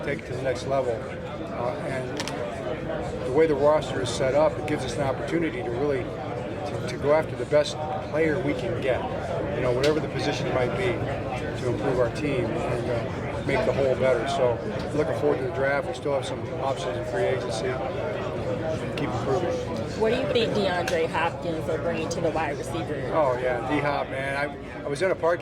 to the next level. And the way the roster is set up, it gives us an opportunity to really to go after the best player we can get. Whatever the position might be, to improve our team and make the whole better. So looking forward to the draft. We still have some options in free agency. Keep improving. What do you think DeAndre Hopkins will bring to the wide receiver? Oh yeah, D-Hop, man. I was in a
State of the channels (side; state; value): both; identical; correlation 1.00